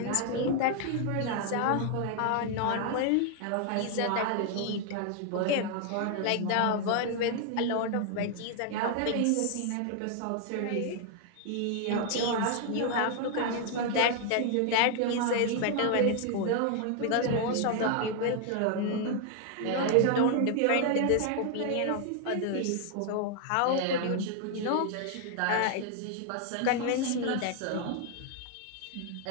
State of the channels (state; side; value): different; both; correlation 0.00